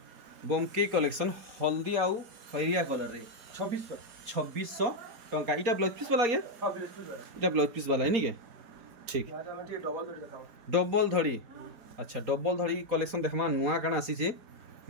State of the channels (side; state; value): left; late; 4.3 ms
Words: बमकी कलेक्शन हल्दी आउ खैरिया कलर रे 2600 टंका इटा ब्लाउज पीस वाला गया इटा ब्लाउज पीस वाला है नी के ठीक डबल धड़ी अच्छा डबल धड़ी कलेक्शन देखमा नुआ काना आसी छे